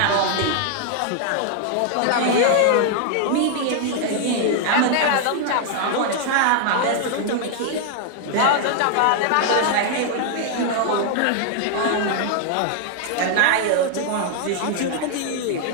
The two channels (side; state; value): both; different; correlation 0.00